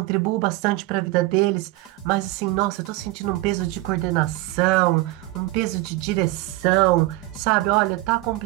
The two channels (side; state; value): left; quieter; 18.7 dB